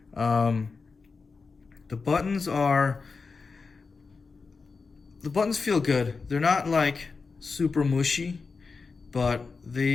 The buttons feel good. They're not like super mushy, but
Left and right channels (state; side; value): quieter; right; 4.6 dB